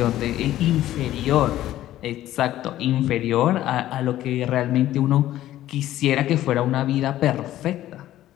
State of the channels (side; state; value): right; quieter; 13.7 dB